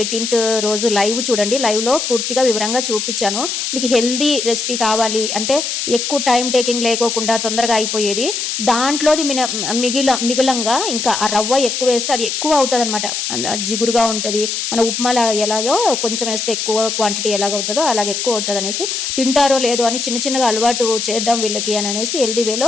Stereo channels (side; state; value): left; noise; hiss, 2 dB below the sound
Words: 18th రోజు లైవ్ చూడండి. లైవ్లో పూర్తిగా వివరంగా చూపించాను. మీకు హెల్దీ రెసిపీ కావాలి అంటే ఎక్కువ టైం టేకింగ్ లేకోకుండా తొందరగా అయిపోయేది. దాంట్లోది మిగిలంగా ఇంకా ఆ రవ్వ ఎక్కువ వేస్తే అది ఎక్కువ అవుతుంది అనమాట, జిగురుగా ఉంటుంది. మన ఉప్మాలా ఎలాగో కొంచెం వేస్తే ఎక్కువ క్వాంటిటీ ఎలాగవుతుందో అలాగే ఎక్కువ అవుతుంది అనేసి, తింటారో లేదో అని చిన్నగా అలవాటు చేద్దాం వీళ్ళకి అని అనేసి హెల్దీ